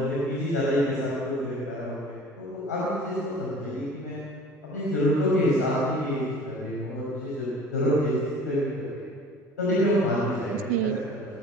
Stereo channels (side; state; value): both; normal; correlation 0.45